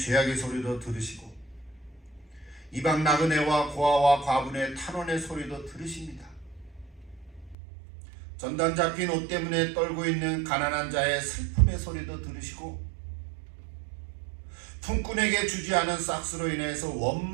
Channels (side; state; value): left; drops out; at 7.6 s